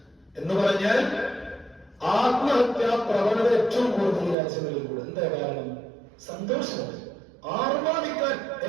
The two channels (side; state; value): left; drops out; at 4.4 s